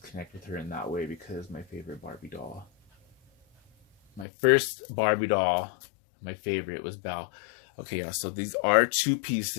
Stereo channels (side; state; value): right; drops out; at 4.2 s